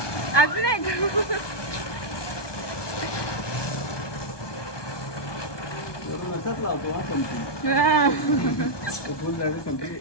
अजून एक मसाच लावतो. हा संपली. संपली.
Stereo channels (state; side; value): late; right; 1.2 ms